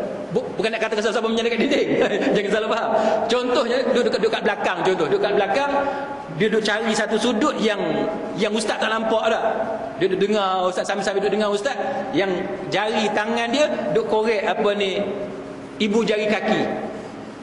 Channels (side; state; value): both; identical; correlation 1.00